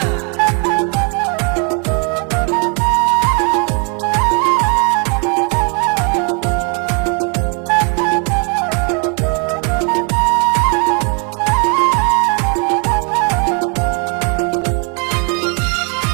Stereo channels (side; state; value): left; quieter; 36.7 dB